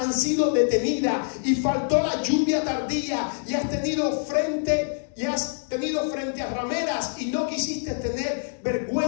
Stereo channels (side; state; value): right; silent; digital silence